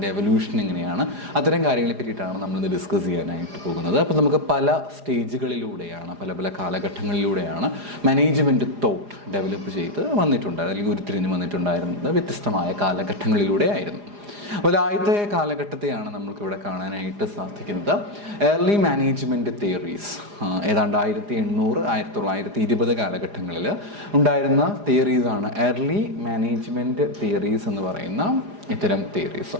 എവല്യൂഷൻ എങ്ങനെയാണ്, അത്തരം കാര്യങ്ങളെ പറ്റിയിട്ടാണ് നമ്മളിന്ന് ഡിസ്കസ് ചെയ്യാനായിട്ട് പോകുന്നത്. അപ്പോൾ നമുക്ക് പല സ്റ്റേജുകളിലൂടെയാണ്, പല കാലഘട്ടങ്ങളിലൂടെയാണ് മാനേജ്മെൻറ്റ് തോട്ട് ഡെവലപ്പ് ചെയ്ത് വന്നിട്ടുണ്ട്, അല്ലെങ്കിൽ ഉരുത്തിരിഞ്ഞ് വന്നിട്ടുണ്ടായിരുന്നത് വ്യത്യസ്തമായ കാലഘട്ടങ്ങളിലൂടെ ആയിരുന്നു. അപ്പോൾ ആദ്യത്തെ കാലഘട്ടത്തെയാണ് നമുക്കിവിടെ കാണാനായിട്ട് സാധിക്കുന്നത്. ഏർലി മാനേജ്മെൻറ്റ് തിയറീസ്, ഏതാണ്ട് 1800 1920 കാലഘട്ടങ്ങളിൽ ഉണ്ടായിരുന്ന തിയറീസാണ് ഏർലി മാനേജ്മെൻറ്റ് തിയറീസ് എന്ന് പറയുന്ന ഇത്തരം തിയറീസ്.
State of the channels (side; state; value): left; late; 4.9 ms